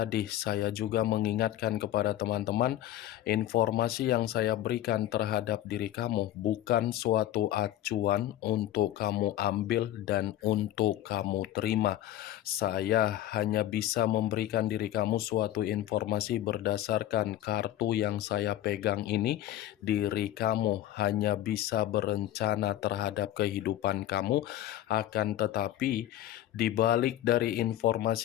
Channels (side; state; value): right; quieter; 13.1 dB